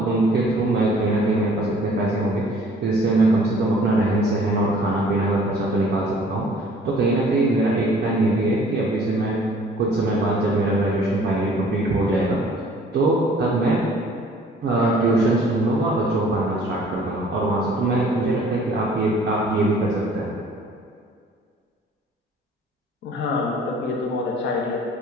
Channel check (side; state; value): both; normal; correlation 0.54